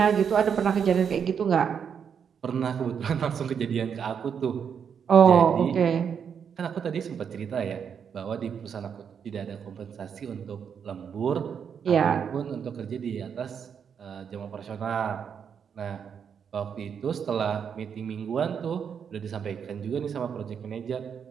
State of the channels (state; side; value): quieter; left; 7.3 dB